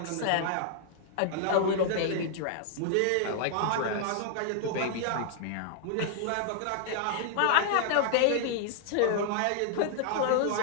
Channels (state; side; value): different; both; correlation 0.00